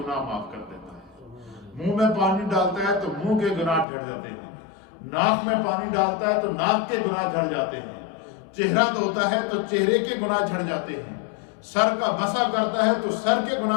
معاف کر دیتا ہے. منہ میں پانی ڈالتا ہے تو منہ کے گناہ جھڑ جاتے ہیں. ناک میں پانی ڈالتا ہے تو ناک کے گناہ جھڑ جاتے ہیں. چہرہ دھوتا ہے تو چہرے کے گناہ جھڑ جاتے ہیں. سر کا مسا کرتا ہے تو سر کے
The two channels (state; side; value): drops out; right; at 3.9 s